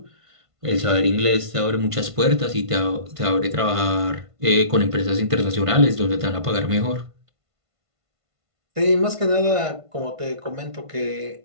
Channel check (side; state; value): left; late; 1.5 ms